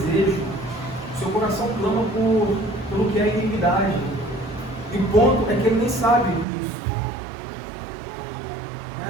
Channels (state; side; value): drops out; left; at 6.5 s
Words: o seu coração clama por pelo que é iniquidade. E o ponto é que ele nem sabe disso.